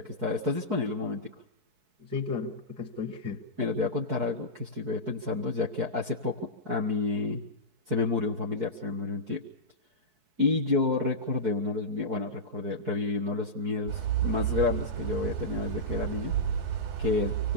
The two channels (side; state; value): left; late; 4.6 ms